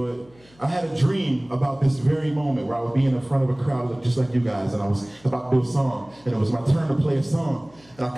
I had a dream about this very moment where I would be in the front of a crowd just like you guys, and I was about to do a song, and it was my turn to play a song, and I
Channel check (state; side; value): noise; left; hum, 29 dB below the sound